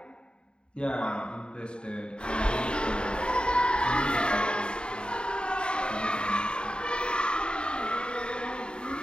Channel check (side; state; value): right; late; 0.051 ms